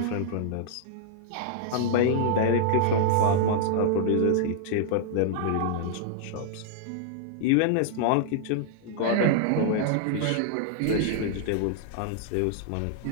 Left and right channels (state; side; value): different; both; correlation -0.01